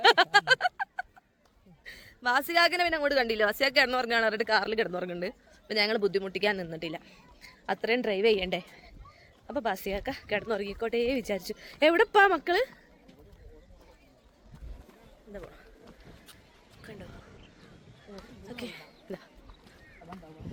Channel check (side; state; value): both; identical; correlation 1.00